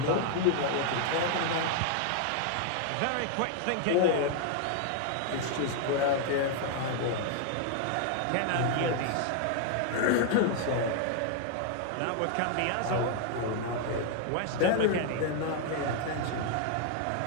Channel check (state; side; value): different; both; correlation 0.00